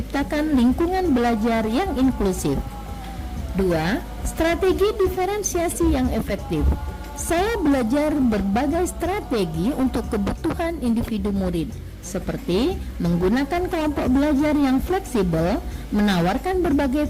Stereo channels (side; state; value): both; identical; correlation 1.00